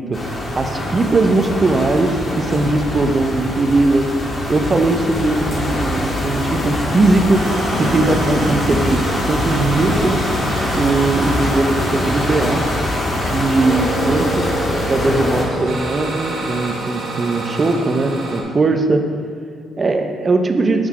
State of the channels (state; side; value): normal; both; correlation 0.80